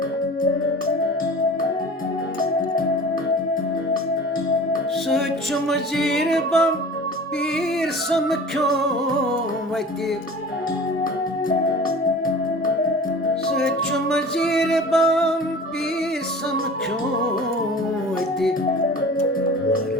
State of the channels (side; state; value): both; normal; correlation 0.40